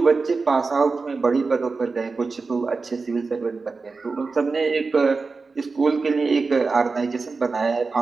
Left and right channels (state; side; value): quieter; left; 4.2 dB